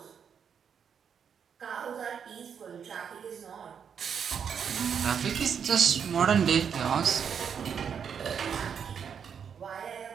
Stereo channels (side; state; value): left; quieter; 7.4 dB